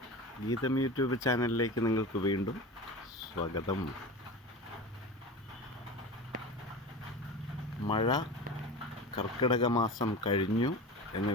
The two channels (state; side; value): normal; both; correlation 0.30